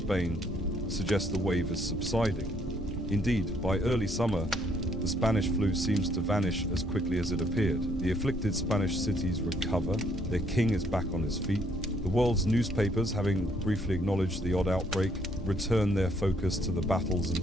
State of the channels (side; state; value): both; normal; correlation 0.67